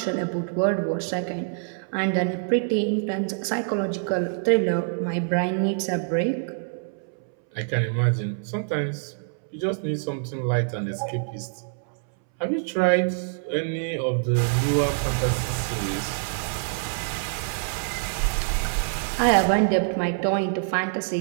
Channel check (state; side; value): silent; left; 61 dB below the other